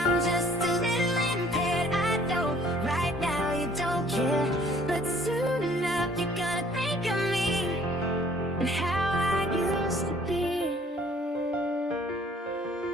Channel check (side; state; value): both; normal; correlation 0.58